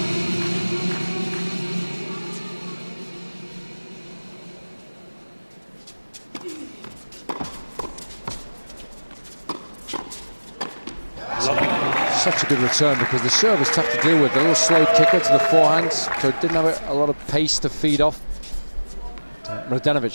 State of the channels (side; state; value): both; inverted; correlation -1.00